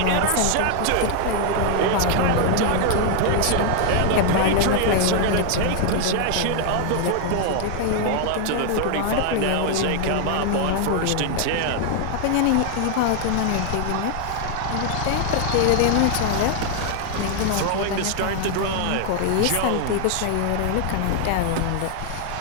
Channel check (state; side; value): different; both; correlation 0.00